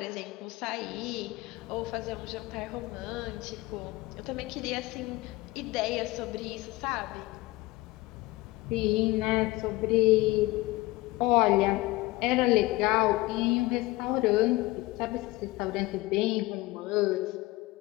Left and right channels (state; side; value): quieter; right; 20.0 dB